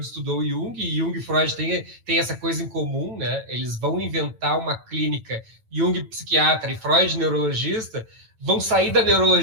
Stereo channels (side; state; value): left; late; 9.1 ms